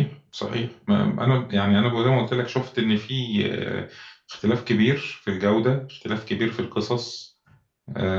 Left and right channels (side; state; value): both; identical; correlation 1.00